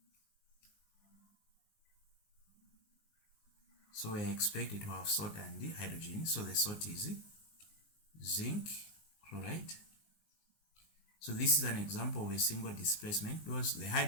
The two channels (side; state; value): right; late; 19 ms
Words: So we are expected to have salt and hydrogen. So the salt is zinc chloride. So this is an example of a single displacement because the